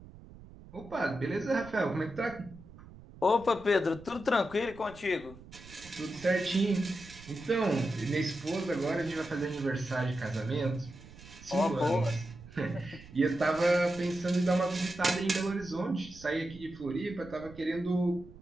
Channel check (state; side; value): noise; right; rumble, 19 dB below the sound